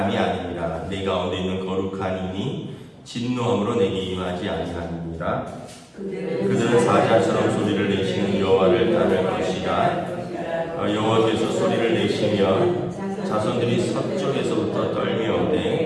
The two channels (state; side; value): identical; both; correlation 1.00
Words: 아니니라. 내 가운데 있는 거룩한 이니 진노함으로 내게 임하지 아니하니라. 그들은 사자처럼 소리를 내시는 여호와를 따를 것이라. 여호와께서 소리를 내시며 자손들이 서쪽에서부터